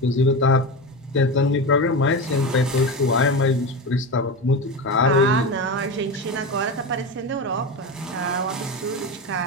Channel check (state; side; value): normal; both; correlation 0.21